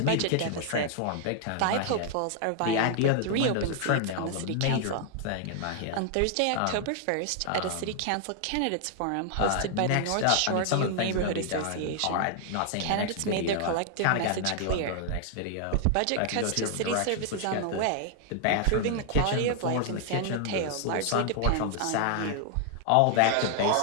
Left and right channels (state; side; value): different; both; correlation 0.00